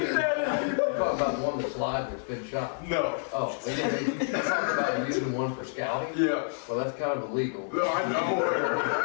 talking about the one that's live that's been shot. no. Oh, we didn't talk about using one for scouting? Yeah. Well, that's kind of illegal. No, I know.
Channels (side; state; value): right; silent; 59 dB below the other